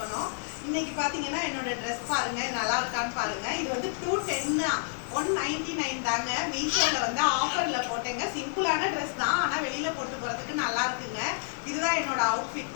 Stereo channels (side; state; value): right; silent; digital silence